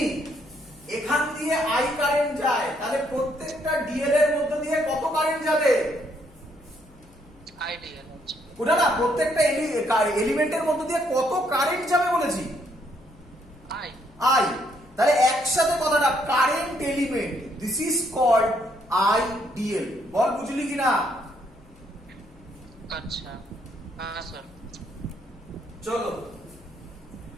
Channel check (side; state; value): left; noise; hum, 26 dB below the sound